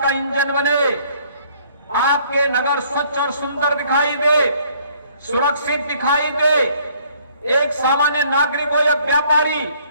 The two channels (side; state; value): both; inverted; correlation -0.61